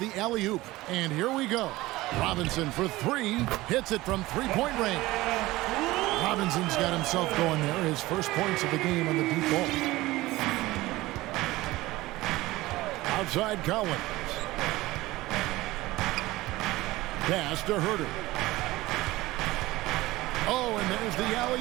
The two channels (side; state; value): left; quieter; 18.7 dB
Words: the alley-oop. And here we go. Robinson for three. Hits it from three-point range. Robinson's got himself going there. His first points of the game on the deep ball. Outside Collins. Pass to Herter. Oh, and there's the